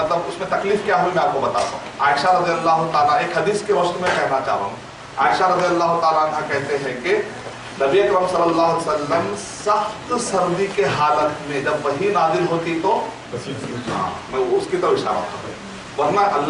اس میں تکلیف کیا ہوئی میں آپ کو بتاتا ہوں. عائشہ رضی اللہ تعالیٰ ایک حدیث کے روشنی میں کہنا چاہ رہا ہوں. عائشہ رضی اللہ تعالیٰ عنہ کہتے ہیں کہ نبی اکرم صلی اللہ علیہ وسلم سخت سردی کے حالت میں جب وحی نازل ہوتی تو میں اس کی طرف اشارہ کرتا ہوں، ورنہ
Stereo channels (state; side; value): identical; both; correlation 1.00